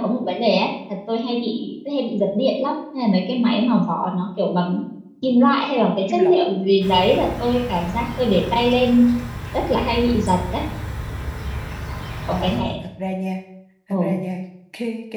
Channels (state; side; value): identical; both; correlation 1.00